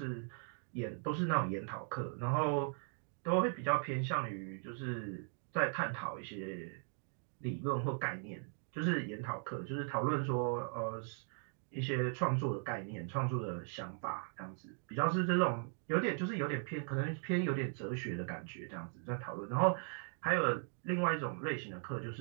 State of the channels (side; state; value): left; silent; 52 dB below the other